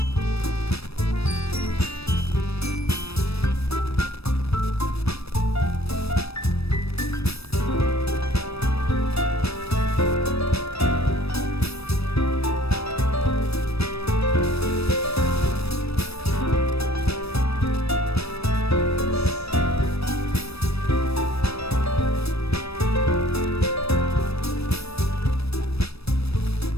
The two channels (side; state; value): right; late; 0.78 ms